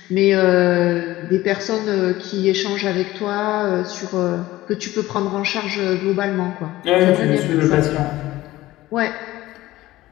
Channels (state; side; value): quieter; right; 16.7 dB